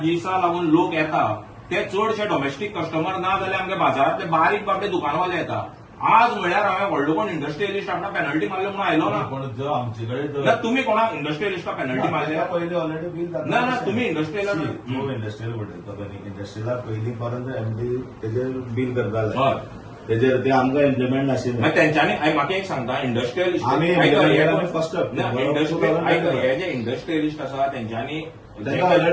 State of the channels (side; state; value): both; identical; correlation 1.00